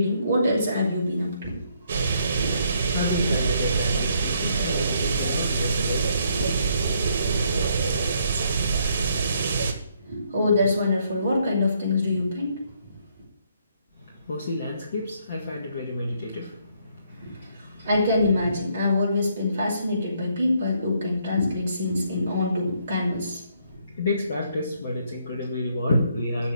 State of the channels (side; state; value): both; inverted; correlation -0.70